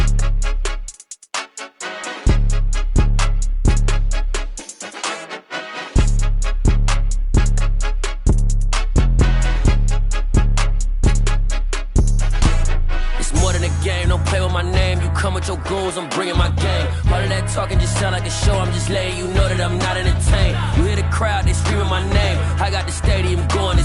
More than a game, don't play with my name. You come with your goons, I'm bringing my game. All of that talking just sound like a show. I'm just letting you know that I'm not entertained. You hear the crowd, they screaming my name. I got the stadium going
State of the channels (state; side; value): identical; both; correlation 1.00